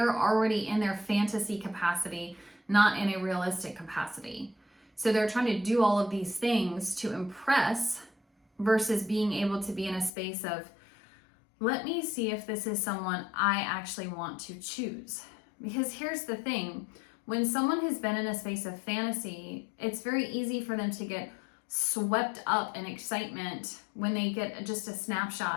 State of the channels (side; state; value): right; drops out; at 10.1 s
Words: already in their fantasy capacity, not in a realistic capacity. So they're trying to do all of these things to impress versus being able to be in a space of, let me see if this is someone I actually want to choose. Because here's the thing, when someone has been in a space of fantasy, it's very easy for them to get swept up in excitement when they get just a